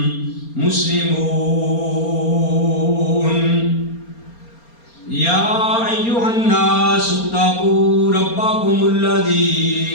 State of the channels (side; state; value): right; late; 4.3 ms